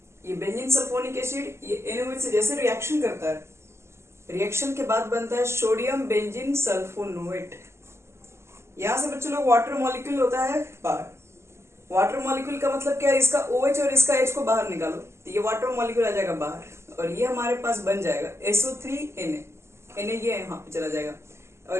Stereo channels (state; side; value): late; left; 0.13 ms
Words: ये बेंजीन सल्फोनिक एसिड ये NaOH से जैसे रिएक्शन करता है, रिएक्शन के बाद बनता है सोडियम बेंजीन सल्फोनेट। यहां से बच्चों लोग वाटर मॉलिक्यूल होता है बाहर। वाटर मॉलिक्यूल का मतलब क्या है, इसका OH और इसका H को बाहर निकालो तो ये वाटर मॉलिक्यूल आ जाएगा बाहर और ये हमारे पास बन जाएगा SO3Na। ये यहां पे चला जाएगा और